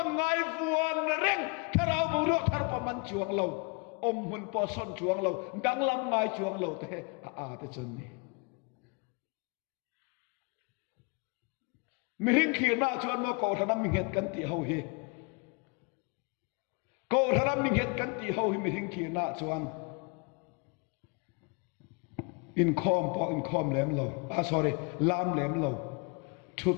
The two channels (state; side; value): quieter; right; 32.4 dB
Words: ngai vuan reng tharau bu ro thar pa man chuang lo om hun po son chuang lo dang lam ngai chuang lo te a ta chun ni mi ring khir na chuan mo ko thanam mi het kan ti ho hi ko thanam mi het kan ti ho hi mi ring khir na chuan in khom lem lo sorry lam lem lo